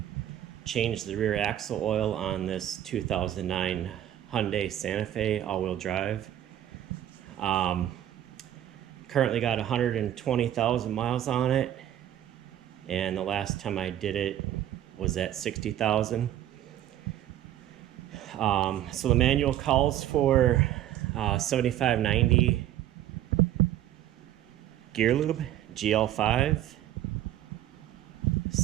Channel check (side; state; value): left; quieter; 12.1 dB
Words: change the rear axle oil on this 2009 Hyundai Santa Fe all-wheel drive. Currently got 120,000 miles on it, and the last time I did it was at 60,000. So the manual calls for 7590 gear lube, GL5.